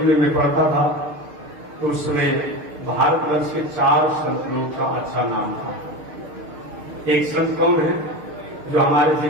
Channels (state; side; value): late; left; 6.6 ms